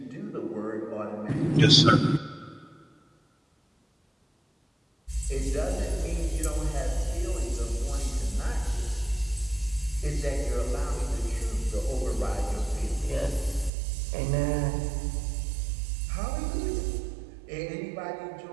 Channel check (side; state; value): left; drops out; at 13.7 s